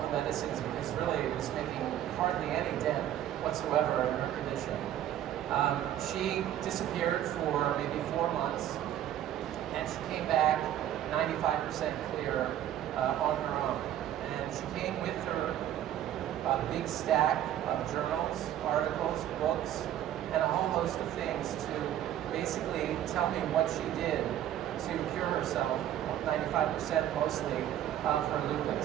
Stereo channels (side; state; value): left; quieter; 11.6 dB